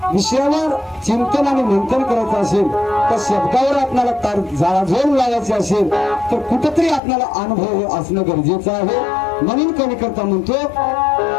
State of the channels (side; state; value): right; drops out; at 7.0 s